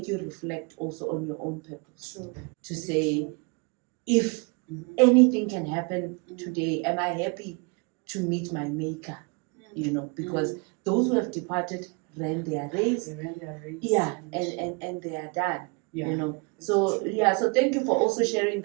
you reflect also on your own purpose. True. To say, if anything can happen today, am I happy to meet my maker? Because those who have departed ran their race. They ran their race. Yeah, and they are done. Yeah. So thank you for also sharing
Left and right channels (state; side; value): quieter; left; 31.6 dB